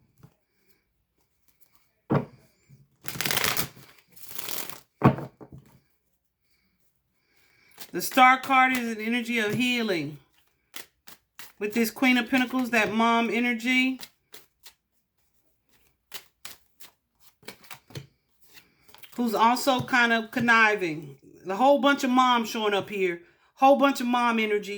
The Star card is an energy of healing. With this Queen of Pentacles, that mom energy. Who's also kind of conniving. A whole bunch of moms showing up here. Whole bunch of mom energy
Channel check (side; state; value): both; identical; correlation 1.00